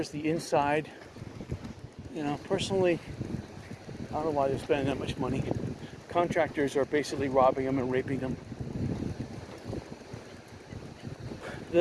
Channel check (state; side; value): identical; both; correlation 1.00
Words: the inside. You know, personally, I don't know why they're spending that much money. Contractors are basically robbing them and raping them.